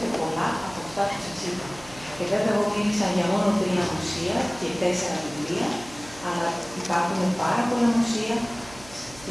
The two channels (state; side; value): noise; right; hum, 19 dB below the sound